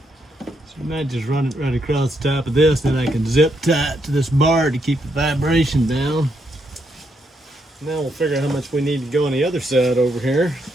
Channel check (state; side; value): normal; both; correlation 0.78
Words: you might just run it right across the top of this, then I can zip tie it to this bar to keep the vibration down. Now we'll figure out how much we need to go on the other side over here.